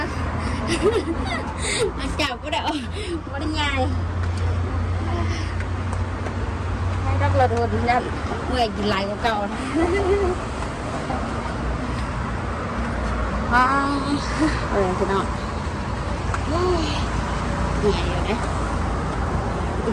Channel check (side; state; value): both; identical; correlation 1.00